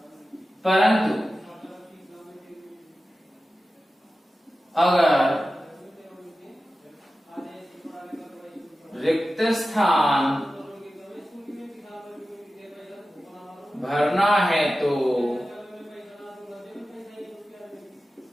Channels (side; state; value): both; normal; correlation 0.94